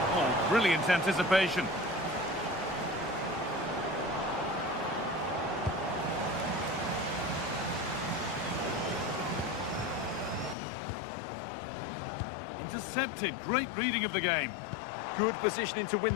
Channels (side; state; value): right; drops out; at 10.6 s